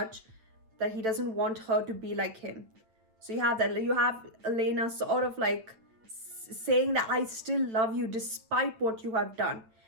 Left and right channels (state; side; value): late; left; 9.1 ms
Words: that he doesn't want her to be like him. So you have Elena sort of saying that I still love you despite what you have done.